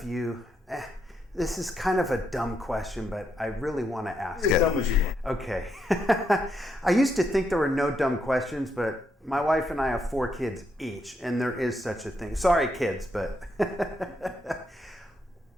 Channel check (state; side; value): normal; both; correlation 0.79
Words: you? This is kind of a dumb question, but I really want to ask it. As dumb as you want. Okay. I used to think there were no dumb questions, but my wife and I have 4 kids each, and there is such a thing. Sorry, kids, but